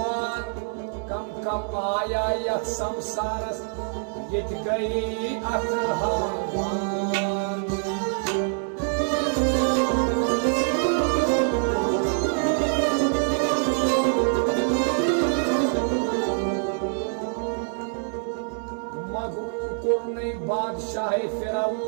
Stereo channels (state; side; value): silent; left; 62 dB below the other